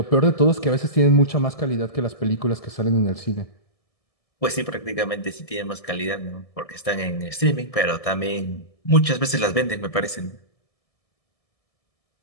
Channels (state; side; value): late; right; 1.7 ms